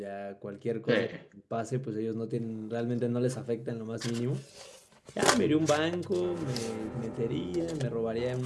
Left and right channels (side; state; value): both; identical; correlation 1.00